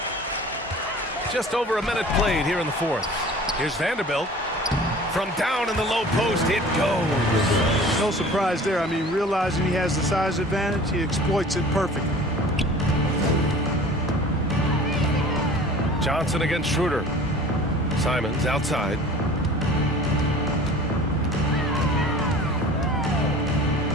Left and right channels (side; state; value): both; normal; correlation 0.44